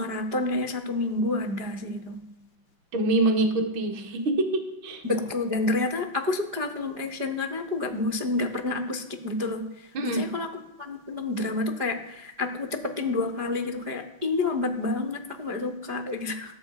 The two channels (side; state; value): left; late; 5.0 ms